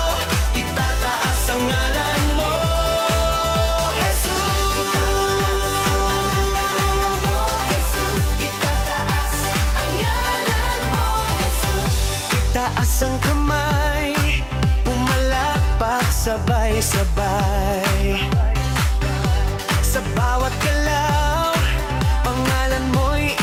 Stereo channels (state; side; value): identical; both; correlation 1.00